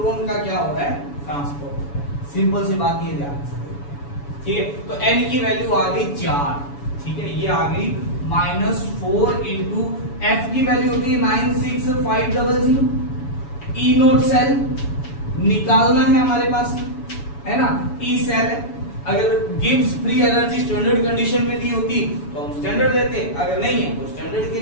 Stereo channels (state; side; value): late; right; 7.1 ms